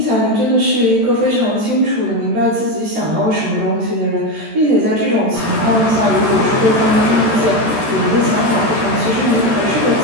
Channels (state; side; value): late; left; 13 ms